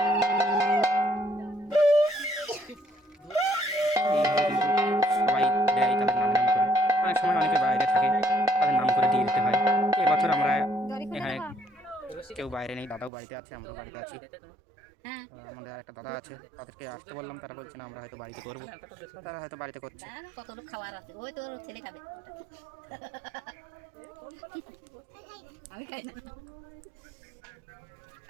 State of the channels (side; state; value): left; drops out; at 13.1 s